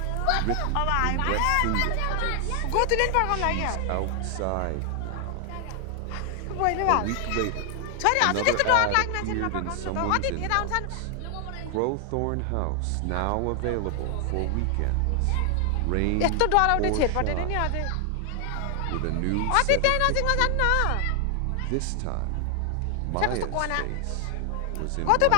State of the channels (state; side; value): different; both; correlation 0.00